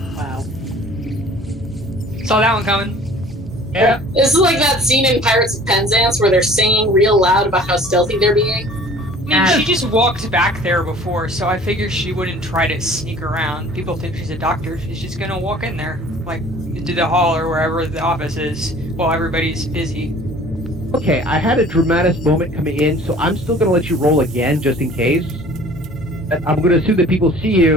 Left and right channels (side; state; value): both; normal; correlation 0.49